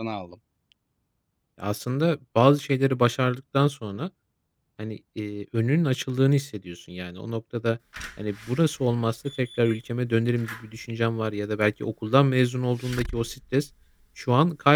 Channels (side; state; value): both; identical; correlation 1.00